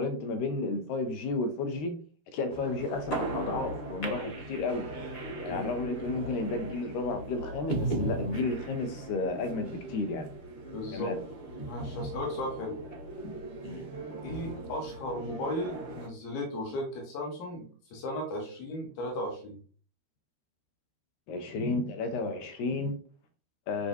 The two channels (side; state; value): right; late; 12 ms